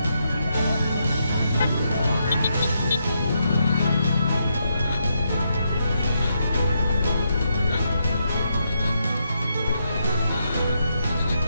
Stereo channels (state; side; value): inverted; both; correlation -0.80